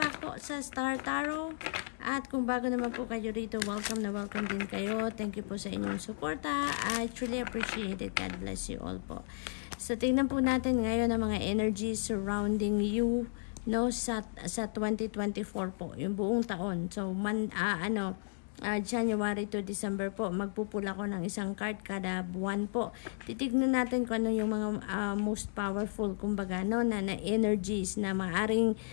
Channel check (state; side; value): silent; right; digital silence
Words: po sa Star Tarot. At kung bago naman po kayo rito, welcome na welcome din kayo. Thank you po sa inyong suporta. I truly appreciate it. God bless you all po. So tingnan po natin ngayon ang mga energies surrounding you, no, sa 2024 po, yung buong taon. So January to December po, magpupula ko ng isang card kada buwan po. Titignan natin kung ano yung mga most powerful, kumbaga, no, na energies na maaring